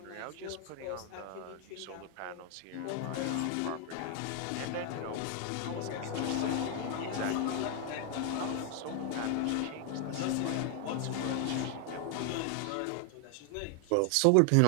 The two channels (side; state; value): both; different; correlation 0.00